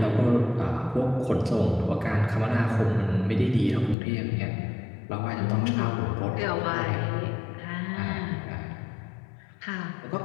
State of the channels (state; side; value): drops out; right; at 4.0 s